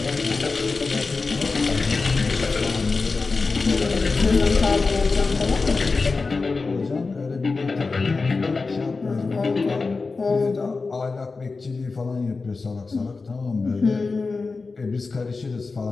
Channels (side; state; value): right; quieter; 4.1 dB